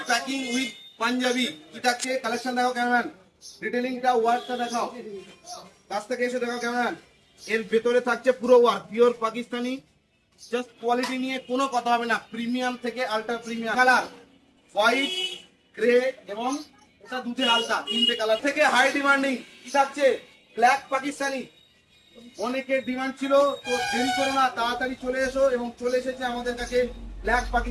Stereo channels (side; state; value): both; identical; correlation 1.00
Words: packing with panjabi. কি থাকছে কালেকশন দেখাও ক্যামেরাম্যান, ডিটেইলিংটা ওয়ার্কটা দেখাও, কাছ থেকে এসে দেখাও ক্যামেরাম্যান। এর ভেতরে থাকছে পুরো work, pure Pakistani. Just quality নিয়ে কোনো কথা হবে না, প্রিমিয়াম থেকে ultra premium. Colour white, grey এবং এটা দুধে আলতা, তিনটে কালার থেকে হাই ডিমান্ডিং। কি থাকছে? ব্ল্যাক পাকিস্তানি। অনেকের ডিমান্ড ছিল, তো দেরি করো না, তাড়াতাড়ি চলে এসো। এবং চলে এসেছে আমাদের কাছে ব্ল্যাক